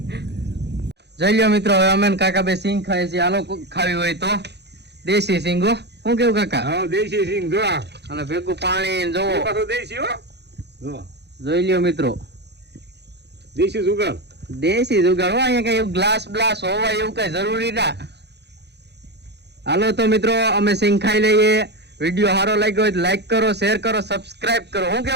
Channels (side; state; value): left; late; 0.49 ms